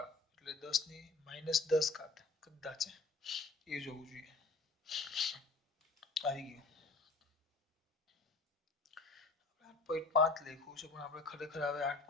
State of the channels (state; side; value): quieter; right; 3.6 dB